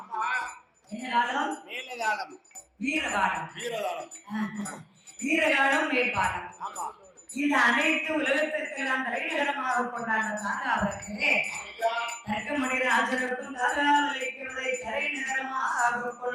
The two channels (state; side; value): identical; both; correlation 1.00